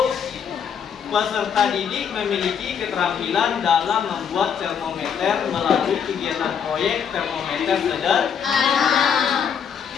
peserta didik memiliki keterampilan dalam membuat termometer melalui kegiatan proyek termometer sederhana.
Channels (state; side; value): quieter; right; 7.5 dB